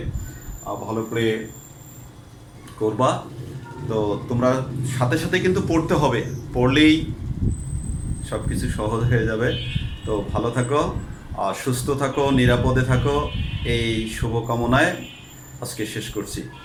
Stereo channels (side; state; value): both; identical; correlation 1.00